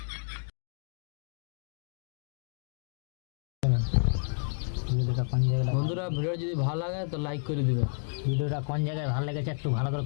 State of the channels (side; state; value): right; silent; digital silence